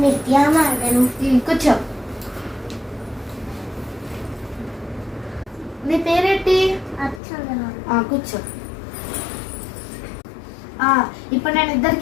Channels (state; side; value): drops out; right; at 7.2 s